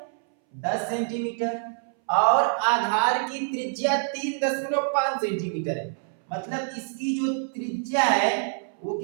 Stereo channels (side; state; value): left; silent; 61 dB below the other